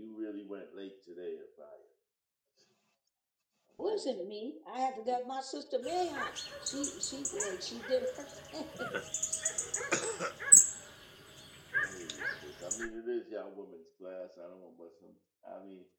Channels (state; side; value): identical; both; correlation 1.00